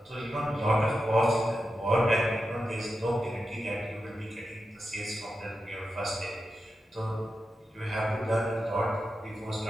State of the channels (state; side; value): normal; both; correlation 0.89